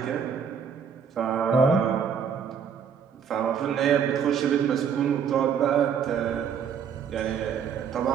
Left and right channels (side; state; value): left; quieter; 7.3 dB